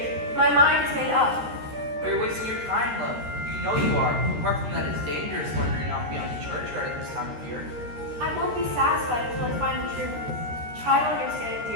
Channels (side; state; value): left; late; 13 ms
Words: My mind is made up. But you're wasting your time, love. You know you are. Apart from that, it's dangerous wandering off beyond the churchyard at this time of year. I won't be satisfied until I find the truth. Try to understand,